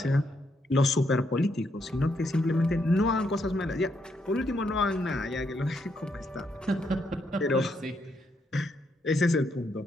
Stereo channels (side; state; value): both; normal; correlation 0.77